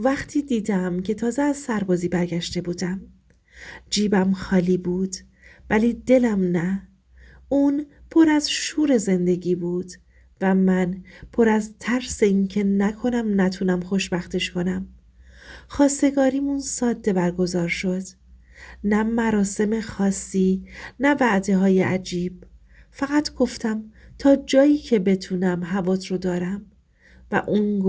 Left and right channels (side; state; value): both; identical; correlation 1.00